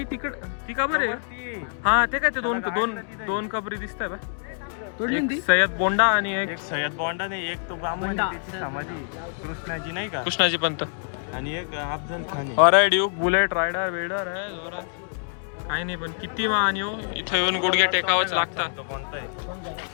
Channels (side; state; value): right; silent; digital silence